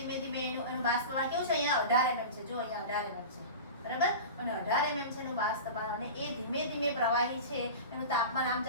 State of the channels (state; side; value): inverted; both; correlation -0.31